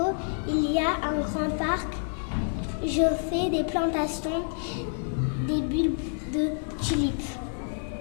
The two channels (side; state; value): right; silent; 59 dB below the other